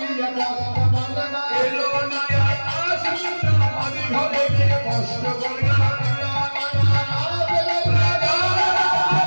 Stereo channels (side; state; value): both; inverted; correlation -1.00